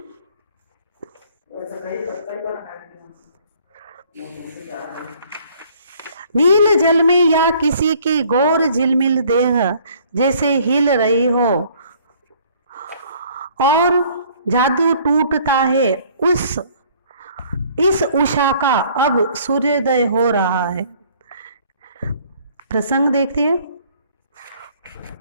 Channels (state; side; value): inverted; both; correlation -0.58